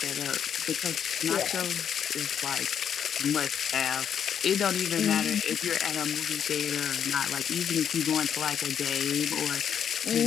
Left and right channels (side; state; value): right; quieter; 8.4 dB